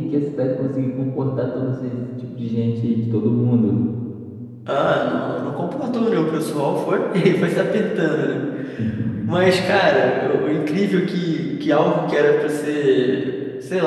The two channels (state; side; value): identical; both; correlation 1.00